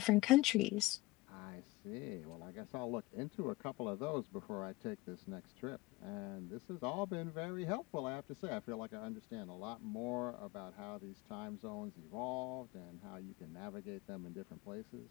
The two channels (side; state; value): right; quieter; 20.0 dB